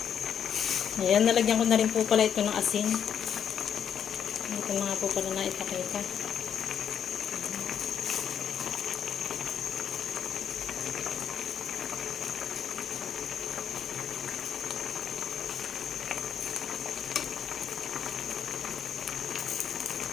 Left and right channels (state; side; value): quieter; right; 8.5 dB